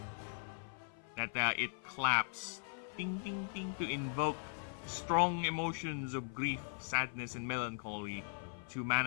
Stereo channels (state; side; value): silent; right; 52 dB below the other